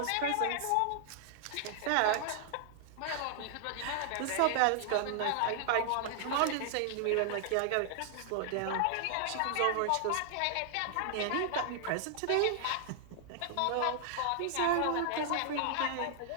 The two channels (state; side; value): different; both; correlation -0.01